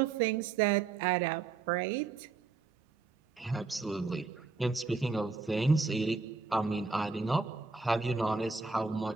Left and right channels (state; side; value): quieter; left; 4.4 dB